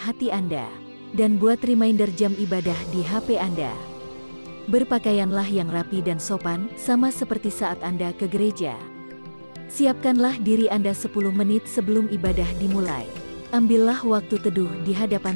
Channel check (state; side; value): inverted; both; correlation -1.00